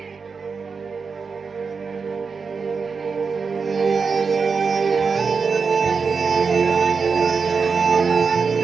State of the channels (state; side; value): quieter; left; 5.2 dB